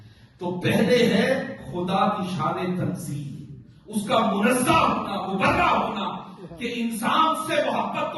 تو پہلے ہے خدا کی شان تنزیہ، اس کا منزہ ہونا، مبرہ ہونا کہ انسان سے محبت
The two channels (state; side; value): identical; both; correlation 1.00